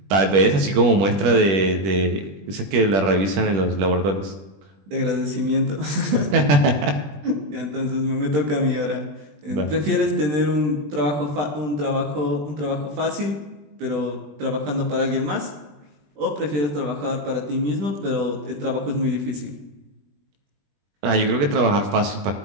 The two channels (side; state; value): left; late; 21 ms